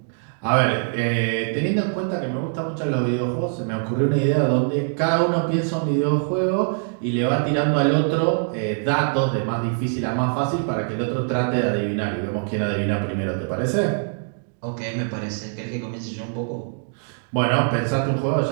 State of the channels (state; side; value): silent; left; 63 dB below the other